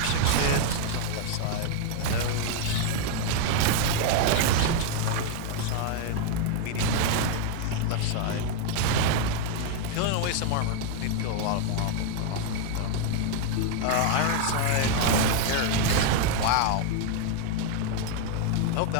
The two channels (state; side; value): different; both; correlation 0.00